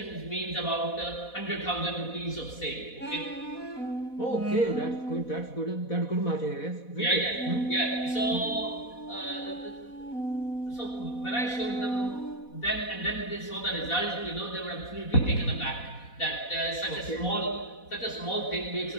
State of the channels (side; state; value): right; late; 4.1 ms